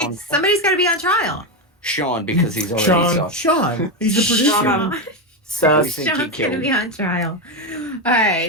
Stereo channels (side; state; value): both; normal; correlation 0.10